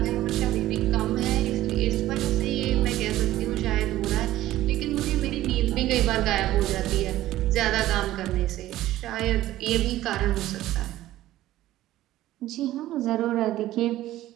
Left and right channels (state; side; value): quieter; left; 14.8 dB